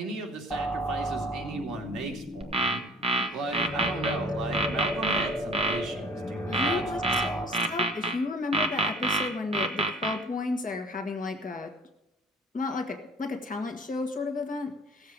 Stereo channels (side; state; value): both; normal; correlation 0.48